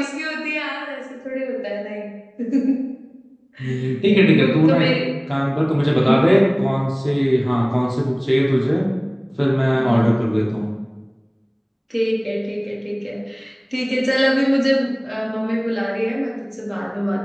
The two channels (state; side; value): identical; both; correlation 1.00